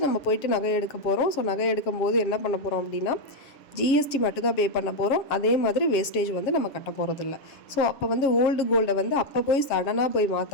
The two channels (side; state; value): right; late; 7.4 ms